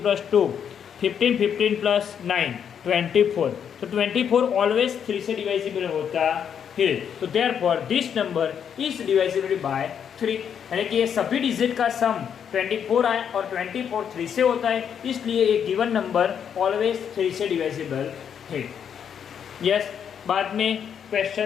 + 2 15, 15 + 9 24. तो 24 ऑलवेज 3 से डिवाइजिबल होता है. तो therefore this number is divisible by 3, यानी कि ये सभी डिजिट का सम 24 आए और 24 3 से होता है, इसलिए एक गिवन नंबर ऑलवेज 3 से डिवाइजिबल है. यस, बाद में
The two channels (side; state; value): right; quieter; 8.1 dB